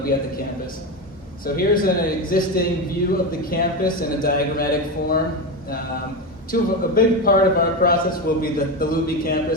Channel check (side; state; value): both; normal; correlation 0.16